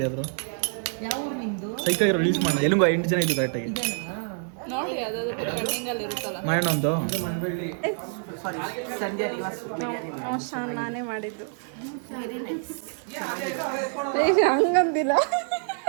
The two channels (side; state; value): left; silent; 60 dB below the other